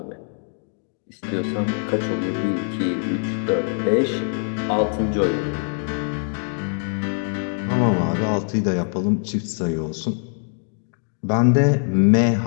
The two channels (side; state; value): right; silent; 59 dB below the other